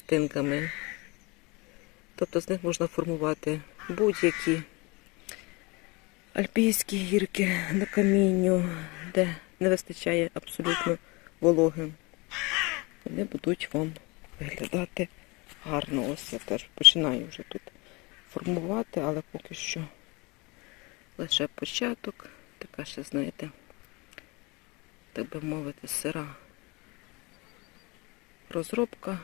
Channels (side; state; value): right; quieter; 26.4 dB